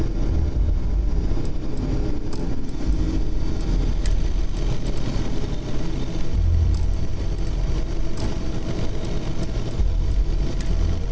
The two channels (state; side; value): identical; both; correlation 1.00